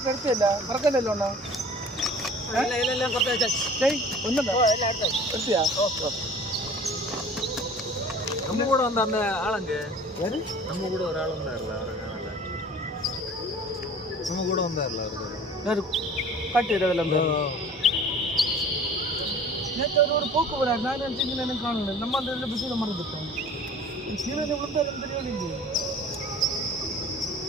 എടുത്തില്ല മറക്കല്ലോ ഒന്നാ എടുത്തിയാ நம்ம கூட வந்த அந்த ஆளுங்க நம்ம கூட ஒரு ஆள் வந்தார்ல அவரை காணல. நம்ம கூட வந்தார்ல அவரு காட்டிடுறதுல நேற்று ஒரு போக்கு வராது. நான் நினச்சிங்க எனக்கு காணல. நம்ம அந்த இதில் பிஸியில் மறந்துட்டோம். சீரனை விழுந்தாலும் தெரியவில்லை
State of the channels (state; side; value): normal; both; correlation 0.45